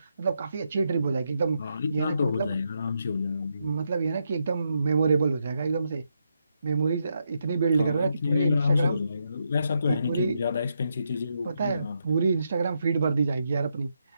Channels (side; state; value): both; inverted; correlation -0.81